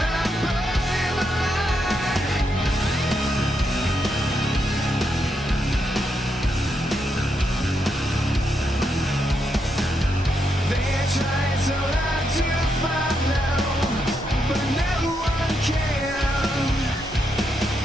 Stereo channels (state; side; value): normal; both; correlation 0.81